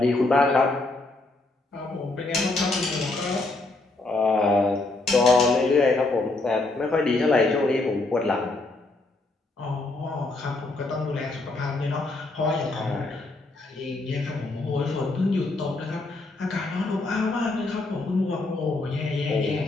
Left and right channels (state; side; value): quieter; right; 3.1 dB